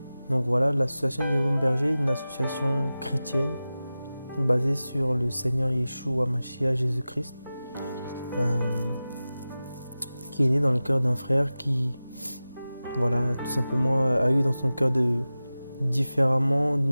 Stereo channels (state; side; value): inverted; both; correlation -0.95